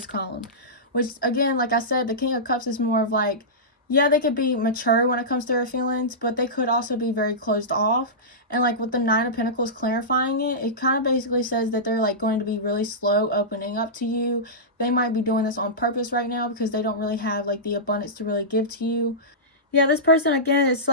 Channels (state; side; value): normal; both; correlation -0.16